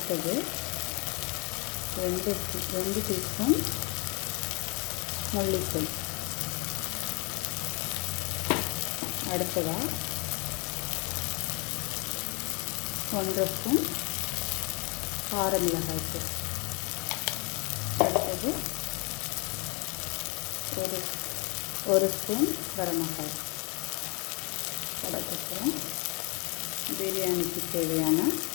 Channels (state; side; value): quieter; right; 31.3 dB